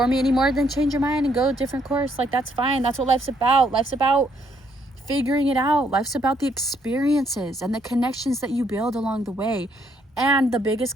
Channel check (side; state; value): both; normal; correlation 0.70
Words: me anymore, then change your mind and go a different course. Like, that's fine. That's what life's about. Life's about figuring it out. Life's about the experiences and the connections that you build along the way. And the biggest